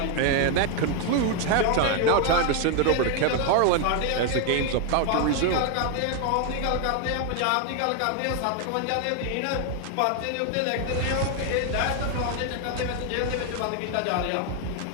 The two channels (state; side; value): different; both; correlation 0.01